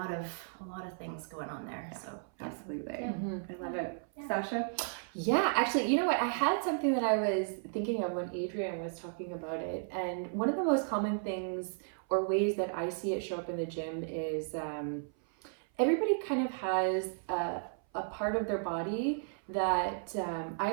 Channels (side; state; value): left; silent; 55 dB below the other